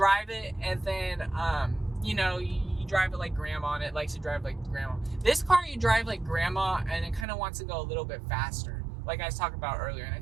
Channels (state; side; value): drops out; left; at 7.2 s